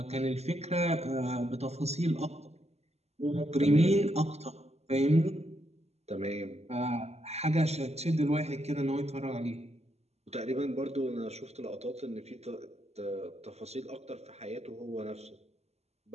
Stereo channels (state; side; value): late; left; 0.31 ms